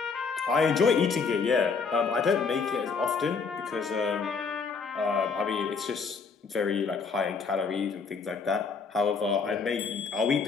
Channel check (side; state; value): right; quieter; 5.2 dB